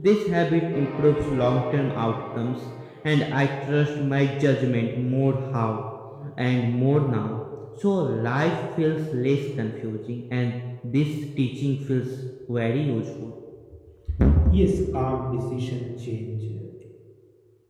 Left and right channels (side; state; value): both; identical; correlation 1.00